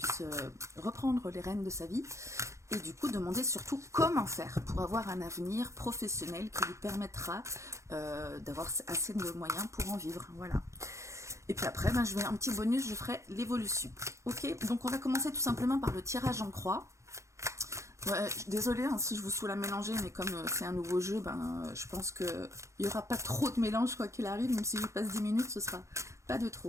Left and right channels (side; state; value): left; late; 0.14 ms